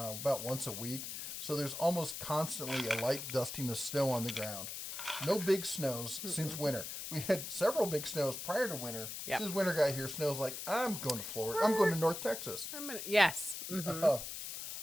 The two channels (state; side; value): noise; left; hiss, 7 dB below the sound